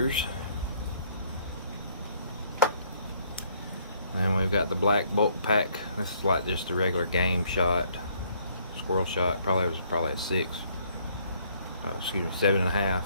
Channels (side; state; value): both; inverted; correlation -0.65